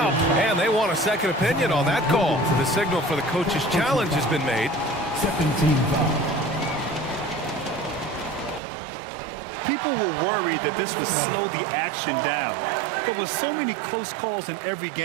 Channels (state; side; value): drops out; left; at 8.6 s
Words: And they want a second opinion on that call. The signal for the coach's challenge has been made. Second team foul. People were worried that this would slow the action down. But with so many close calls in every